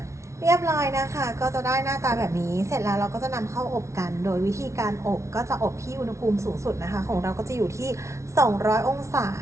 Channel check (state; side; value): late; left; 0.14 ms